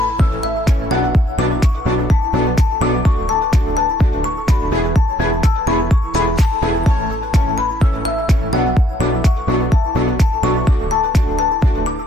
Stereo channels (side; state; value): both; normal; correlation 0.67